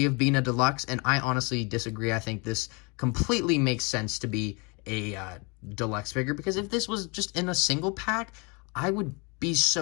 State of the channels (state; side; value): quieter; right; 30.7 dB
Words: of being a deluxe, and I honestly disagree. I think this completely makes sense to be a deluxe figure, because if this was just in a single pack, I would be